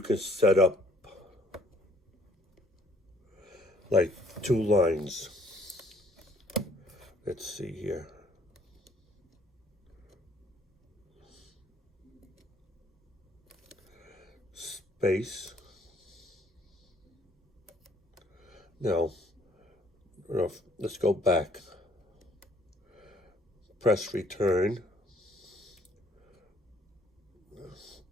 set up like 2 lines. Let's see here. Space. Now, let's go back. Press return.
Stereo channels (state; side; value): normal; both; correlation 0.62